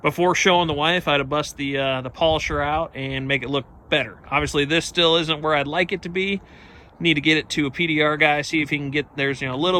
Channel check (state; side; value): identical; both; correlation 1.00